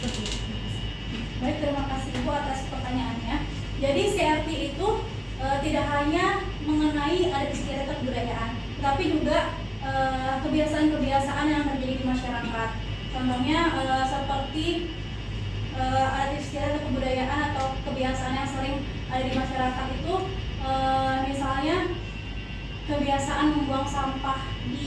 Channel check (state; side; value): identical; both; correlation 1.00